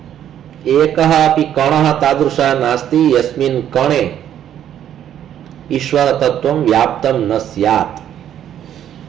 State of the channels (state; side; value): quieter; left; 10.4 dB